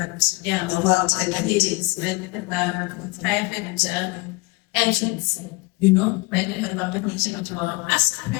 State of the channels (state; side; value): quieter; right; 24.5 dB